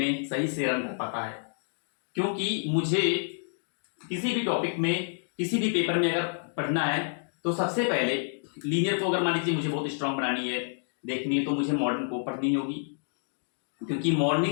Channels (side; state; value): right; silent; digital silence